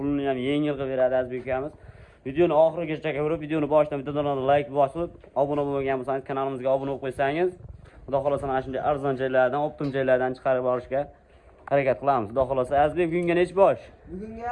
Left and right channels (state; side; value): identical; both; correlation 1.00